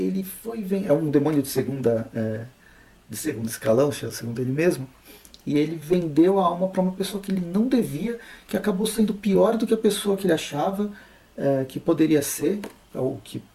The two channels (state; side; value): identical; both; correlation 1.00